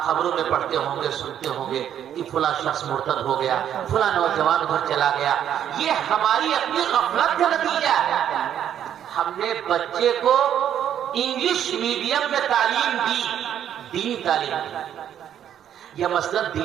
خبروں میں پڑھتے ہوں گے، سنتے ہوں گے کہ فلاں شخص مرتد ہو گیا، فلاں نوجوان ادھر چلا گیا، یہ ہماری اپنی غفلت کا نتیجہ ہے۔ ہم نے بچے کو انگلش میڈیم میں تعلیم دی، دینی تعلیم دی، یا مثلا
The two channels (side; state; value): left; quieter; 9.9 dB